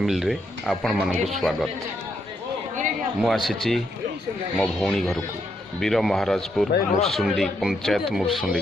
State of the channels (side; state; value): both; normal; correlation 0.78